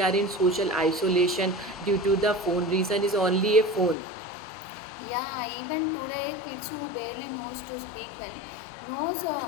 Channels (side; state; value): right; drops out; at 4.0 s